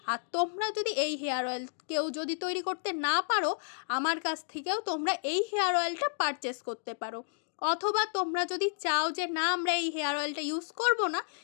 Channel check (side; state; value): right; silent; digital silence